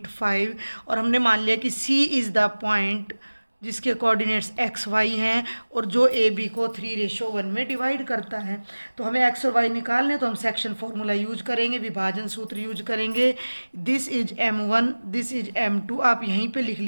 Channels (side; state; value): both; inverted; correlation -1.00